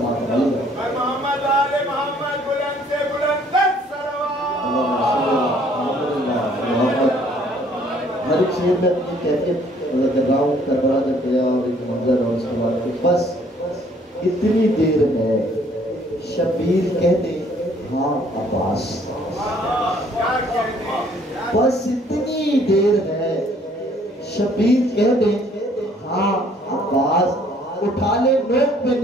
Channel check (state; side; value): normal; both; correlation 0.61